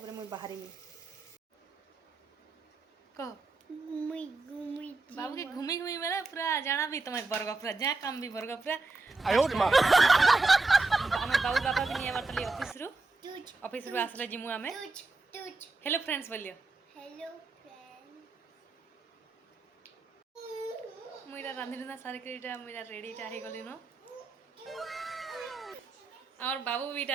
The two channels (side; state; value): left; quieter; 3.5 dB